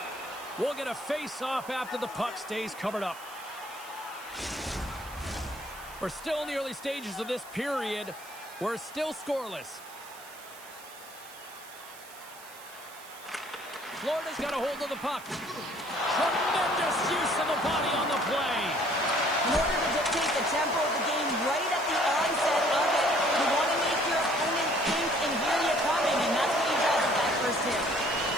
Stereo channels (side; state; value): right; noise; hiss, 18 dB below the sound